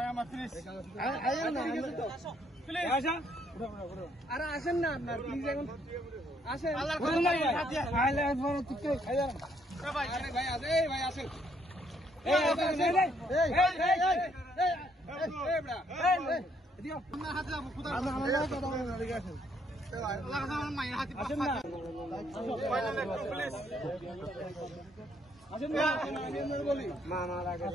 আমার প্লিজ আরে আসেন না আপনার প্লিজ এখন আসেন আল্লাহর কসম ফাটিয়া খাইলে পরে তুই খাইয়া ভাই আরে ভাই আসে ভাই আসেন এই এই এই এই বড়া এই এদিকে আপনার হাতে যাবো কোথার আমার লাগে কথা বলেন না ঠিক আছে আল্লাহর কসম আমার মায়ের হাতে আসেন না প্লিজ আসেন না আমি বলি মা মারা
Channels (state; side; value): normal; both; correlation 0.70